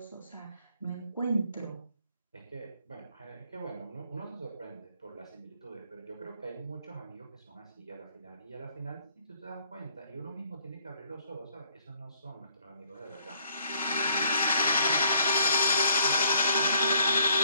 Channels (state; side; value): inverted; both; correlation -0.64